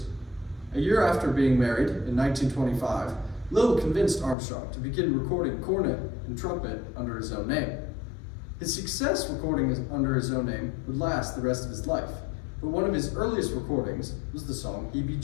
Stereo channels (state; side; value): drops out; right; at 4.4 s